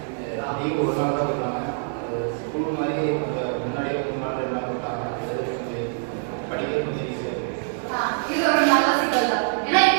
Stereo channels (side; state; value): left; silent; digital silence